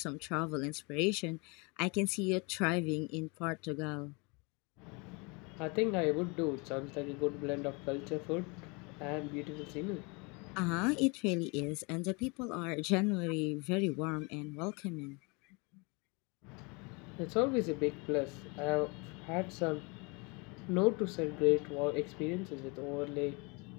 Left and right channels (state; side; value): quieter; right; 29.9 dB